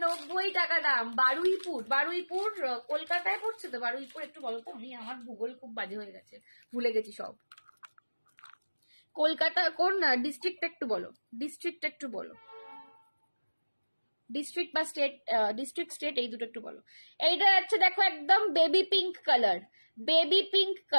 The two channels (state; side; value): inverted; both; correlation -1.00